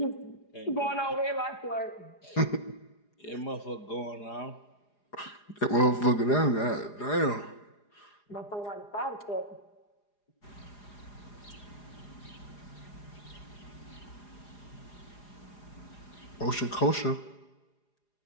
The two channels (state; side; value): late; right; 4.9 ms